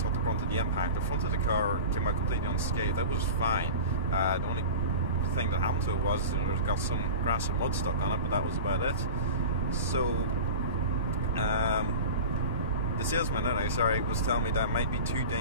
the brunt of the impact. The front of the car came out completely unscathed. That was fine. The only thing that happened to it was, you know, it got some grass and mud stuck on it, but that was about it. So the salesman, was telling me that it might be too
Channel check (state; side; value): inverted; both; correlation -0.33